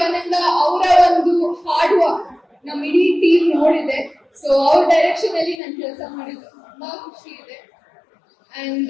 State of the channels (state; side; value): drops out; right; at 5.6 s